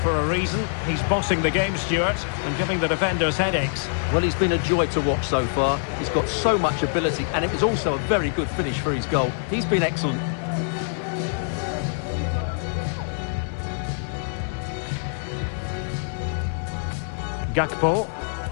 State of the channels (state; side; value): silent; right; 60 dB below the other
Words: for a reason. He's bossing the game, Stuart, and giving the defenders headaches. Well, he's been a joy to watch so far. He's got so much ability, and it was also a very good finish for his goal. He's been excellent. Gakpo.